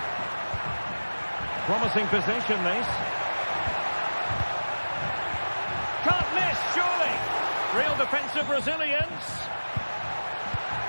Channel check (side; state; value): both; inverted; correlation -1.00